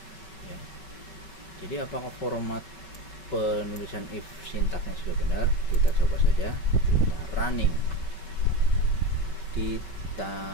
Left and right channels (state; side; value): late; right; 5.3 ms